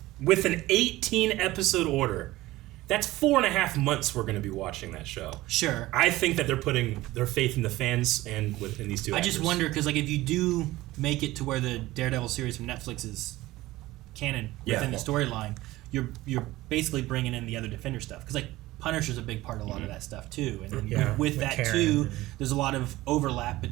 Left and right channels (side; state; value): left; quieter; 17.7 dB